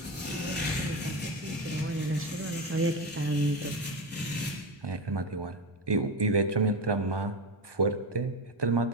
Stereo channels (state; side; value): normal; both; correlation 0.19